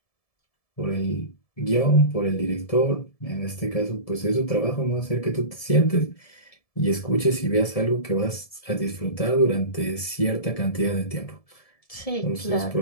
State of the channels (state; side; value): late; right; 1.7 ms